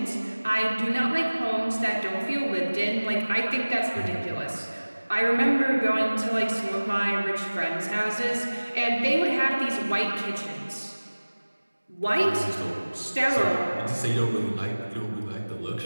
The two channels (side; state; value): both; inverted; correlation -1.00